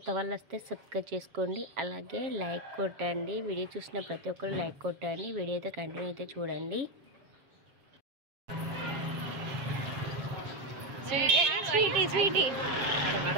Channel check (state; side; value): late; left; 7.3 ms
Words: వాళ్ళు వస్తే సబ్స్క్రైబ్ చేసుకోండి, అలాగే లైక్ కొట్టండి. వీడియో చూసిన ప్రతి ఒక్కరు లైక్ కొట్టండి. వీడియో అయితే కంటిన్యూ అయితే చూడండి. స్వీటీ స్వీటీ